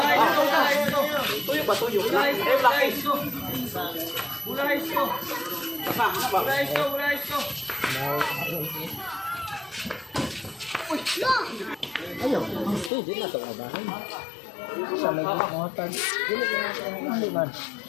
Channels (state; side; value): drops out; right; at 12.9 s